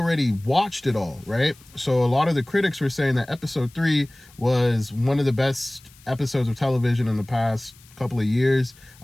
watched it all, right? So a lot of the critics were saying that episode 3 was one of the best episodes of television in the past couple of years,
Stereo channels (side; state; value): left; noise; hiss, 26 dB below the sound